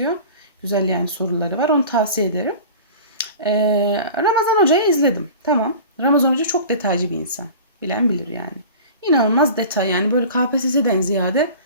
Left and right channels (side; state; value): both; inverted; correlation -0.39